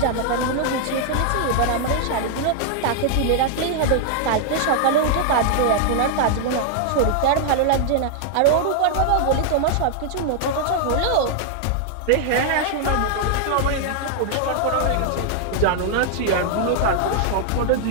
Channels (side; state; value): both; different; correlation -0.01